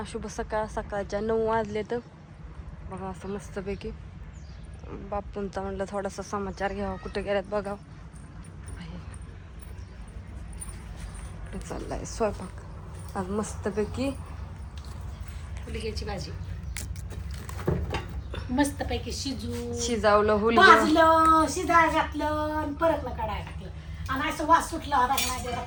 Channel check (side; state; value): both; identical; correlation 1.00